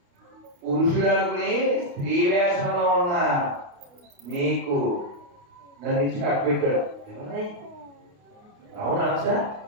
పురుషుడు అనుకుని స్త్రీ వేషంలో ఉన్న మీకు నన్ను ఇచ్చి కట్టబెట్టాడు. అవునా సార్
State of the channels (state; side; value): late; left; 29 ms